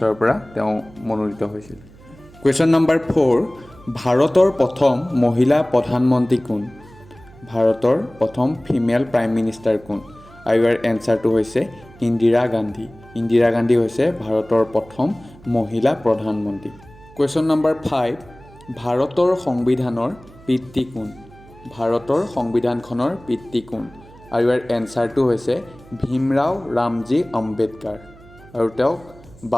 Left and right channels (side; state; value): right; noise; hum, 23 dB below the sound